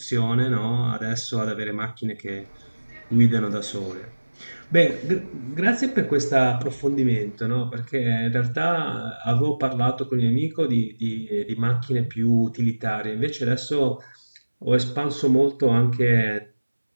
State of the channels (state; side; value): inverted; both; correlation -1.00